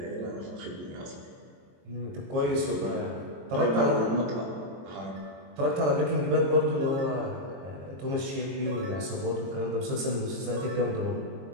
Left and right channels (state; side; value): late; left; 22 ms